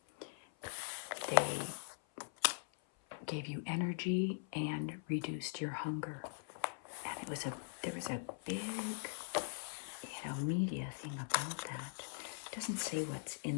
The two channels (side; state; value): right; silent; 50 dB below the other